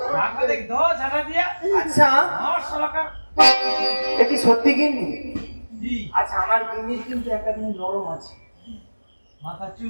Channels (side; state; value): both; inverted; correlation -1.00